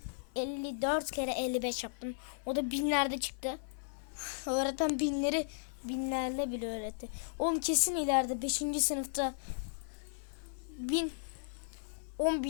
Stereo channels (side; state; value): right; silent; 54 dB below the other